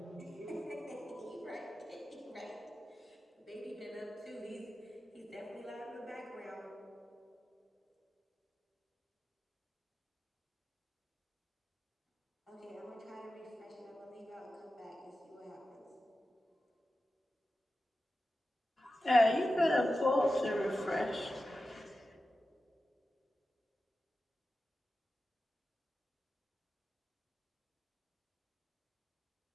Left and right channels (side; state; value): both; normal; correlation 0.93